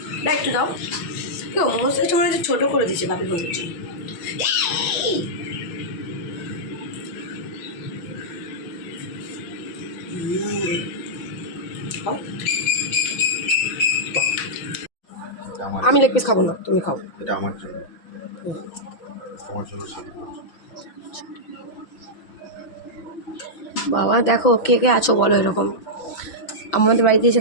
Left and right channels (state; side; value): late; right; 6.1 ms